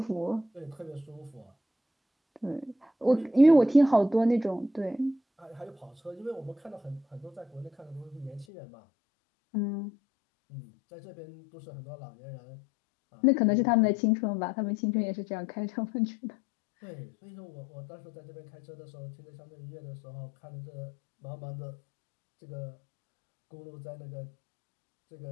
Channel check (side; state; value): right; drops out; at 8.5 s